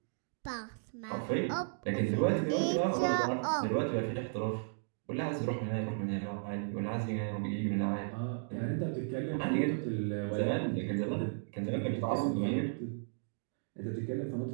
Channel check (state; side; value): silent; left; digital silence